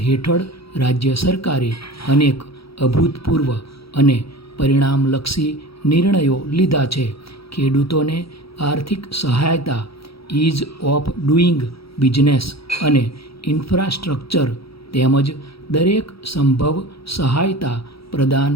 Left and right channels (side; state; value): right; late; 0.76 ms